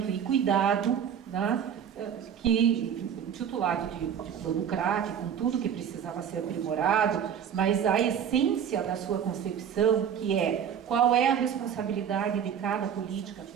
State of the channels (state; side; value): quieter; left; 8.4 dB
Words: e cuidado, né, que titulado de plano CRAC, com tudo que precisava ser aprimorado, mas a essência da sua concepção, que é qual é a responsabilidade de cada política